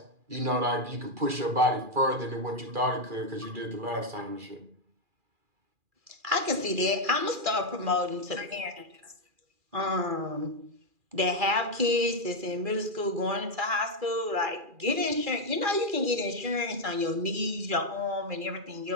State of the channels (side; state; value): left; late; 2.4 ms